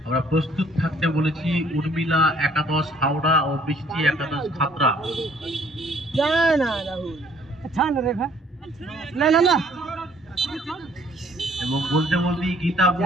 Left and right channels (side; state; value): both; normal; correlation 0.60